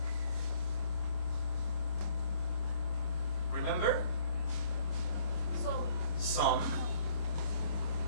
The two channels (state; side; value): late; right; 25 ms